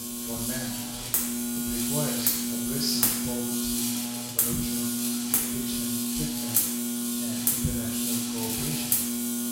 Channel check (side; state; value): both; identical; correlation 1.00